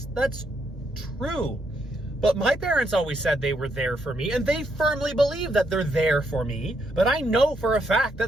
true. But my parents always said they were there for me, and they firmly believe that they're there for me, but I know for a fact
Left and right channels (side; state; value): both; normal; correlation 0.77